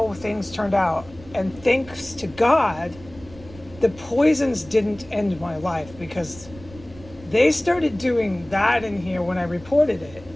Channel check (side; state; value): right; noise; rumble, 20 dB below the sound